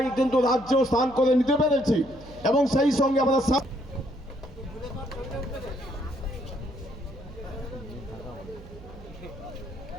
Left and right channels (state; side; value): noise; right; hum, 18 dB below the sound